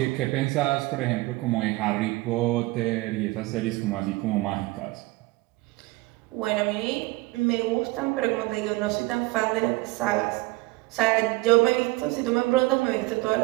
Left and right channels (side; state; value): left; quieter; 21.6 dB